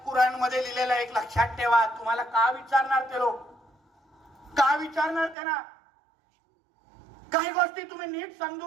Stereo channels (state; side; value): drops out; left; at 5.4 s